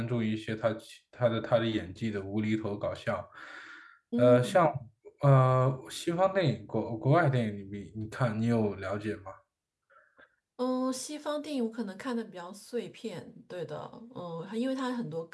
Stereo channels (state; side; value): identical; both; correlation 1.00